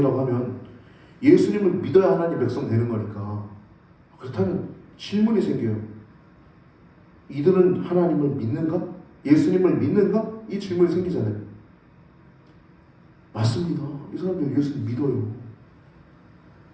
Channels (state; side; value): identical; both; correlation 1.00